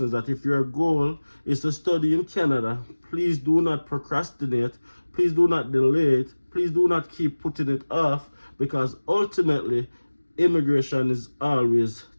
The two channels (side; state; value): both; inverted; correlation -1.00